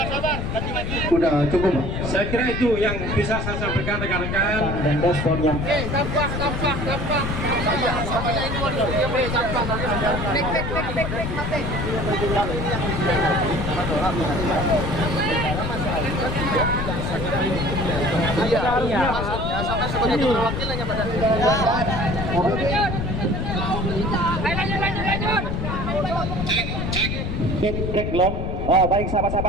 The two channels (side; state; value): left; noise; rumble, 3 dB below the sound